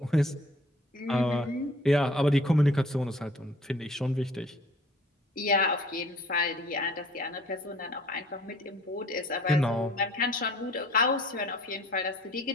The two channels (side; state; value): both; normal; correlation 0.53